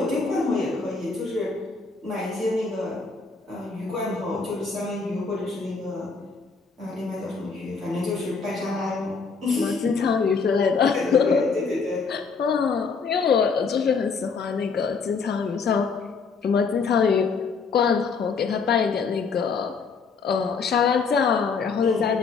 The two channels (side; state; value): right; quieter; 5.0 dB